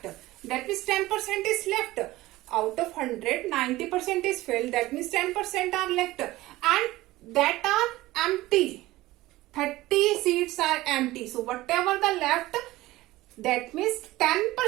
That means 10% is left. Out of 100, 90% is filled. That means 10% are left. And that are empty. 30 seats are empty. So whatever the left, that means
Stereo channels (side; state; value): left; quieter; 17.9 dB